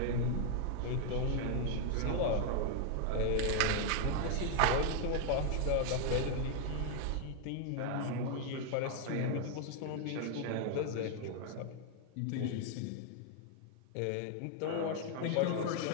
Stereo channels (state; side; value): different; both; correlation 0.00